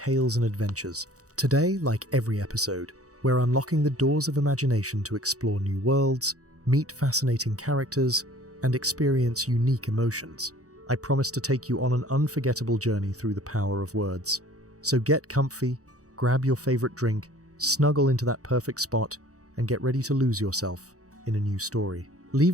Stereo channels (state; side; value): late; left; 0.66 ms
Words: and adventures. Today, like every episode, we're unlocking the doors of imagination to explore new worlds, meet fascinating characters, and experience unique emotions. I promise to take you on an unforgettable journey through the power of words. So get comfy, grab your favorite drink, snuggle into that perfect spot, and get ready to lose yourself in a new story.